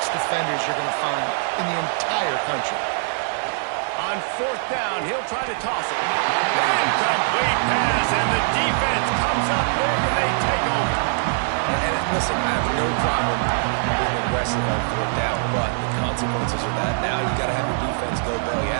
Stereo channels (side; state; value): left; silent; digital silence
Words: defenders you're going to find in the entire country. On 4th down, he'll try to toss it. Incomplete pass, and the defense comes up big, and they take over. And listen, I have no problem being aggressive on 4th down, but the consequences of that, now you've got to have your defense go bail you